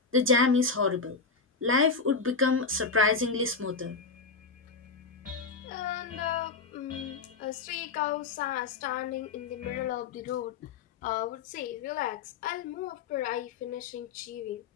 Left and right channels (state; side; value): quieter; right; 4.6 dB